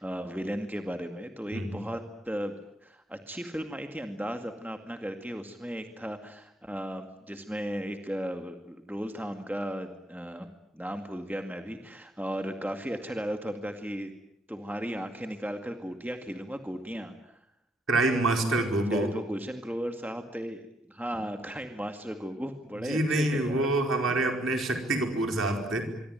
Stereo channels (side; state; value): both; normal; correlation 0.71